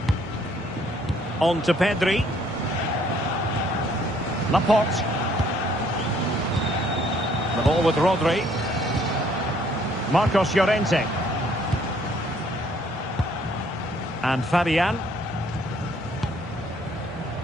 On to Pedri. Laporte. The ball with Rodri. Marcos Llorente. And Fabian.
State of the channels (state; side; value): normal; both; correlation 0.64